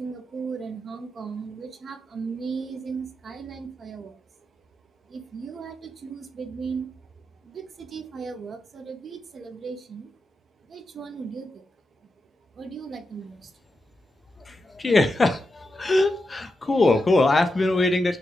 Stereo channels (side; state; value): both; normal; correlation 0.88